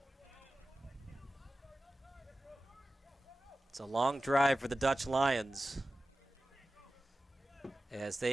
It's a long drive for the Dutch Lions, as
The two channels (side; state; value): both; normal; correlation 0.95